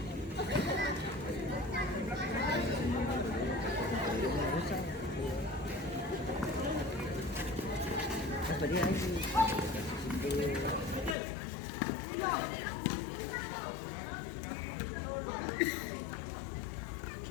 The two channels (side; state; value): right; drops out; at 11.2 s